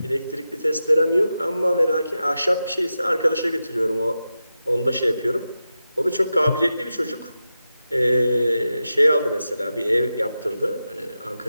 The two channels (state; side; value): inverted; both; correlation -0.91